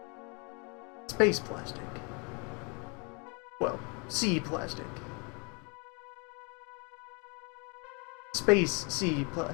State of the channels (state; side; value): quieter; right; 32.9 dB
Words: Space plastic. Well, sea plastic. Space sea